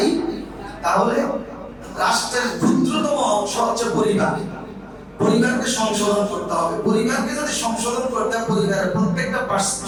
তাহলে রাষ্ট্রের ক্ষুদ্রতম অংশ হচ্ছে পরিবার। পরিবারকে সংশোধন করতে হবে। পরিবারকে যদি সংশোধন করতে হয়, পরিবারের প্রত্যেকটা পার্সন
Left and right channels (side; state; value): both; identical; correlation 1.00